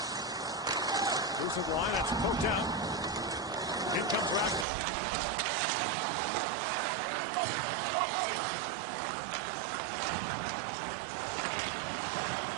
Loose of line, that's poked out. In comes Raska, one-on-one with Kristanov. Shoots, the little dribbler goes down to Askarov. Sends it across to Kristanov. You see the energy that he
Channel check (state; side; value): drops out; left; at 4.7 s